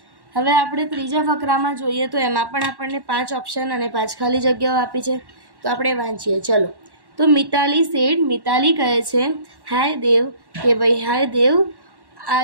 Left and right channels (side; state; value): left; late; 1.1 ms